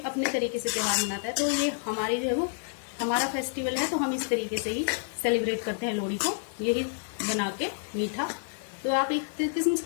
अपने तरीके से त्योहार मनाता है। तो ये हमारी जो है वो हमारा फेस्टिवल है, तो हम इस तरीके से ही सेलिब्रेट करते हैं लोहड़ी को, यही बना के मीठा। तो आप एक किस्म से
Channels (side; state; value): right; silent; digital silence